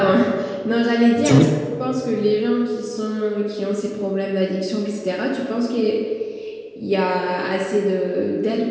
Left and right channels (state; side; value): identical; both; correlation 1.00